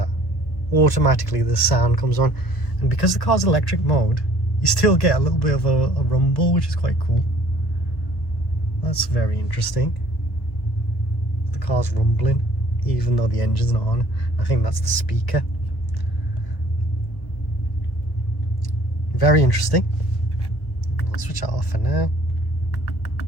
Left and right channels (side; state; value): right; late; 1.4 ms